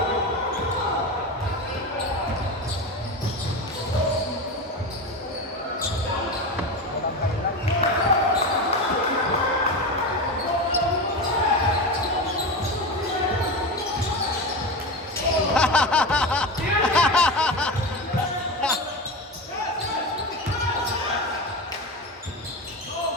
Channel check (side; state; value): both; normal; correlation 0.22